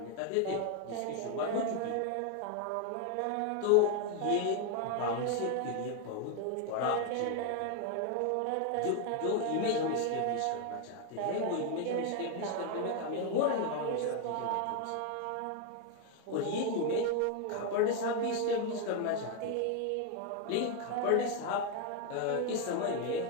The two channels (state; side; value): different; both; correlation 0.01